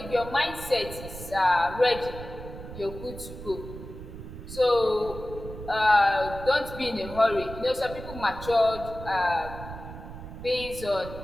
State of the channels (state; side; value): noise; right; rumble, 12 dB below the sound